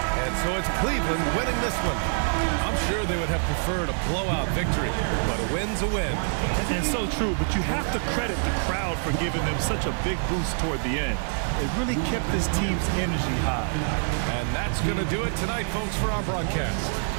And so it's Cleveland winning this one. I'm sure they would have preferred a blowout victory, but a win's a win. And so true, but you have to credit the crowd for giving them such a big boost toward the end. It really kept this team's energy high. And that's going to do it tonight, folks, for our broadcast.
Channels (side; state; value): left; silent; digital silence